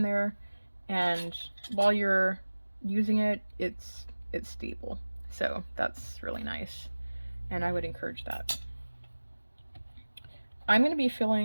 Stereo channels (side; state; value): both; inverted; correlation -1.00